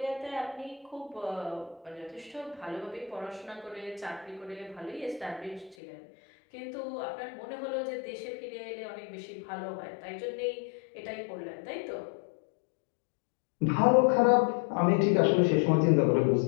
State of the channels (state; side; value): drops out; right; at 5.8 s